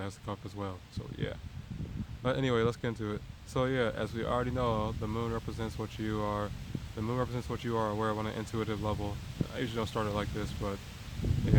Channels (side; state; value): both; identical; correlation 1.00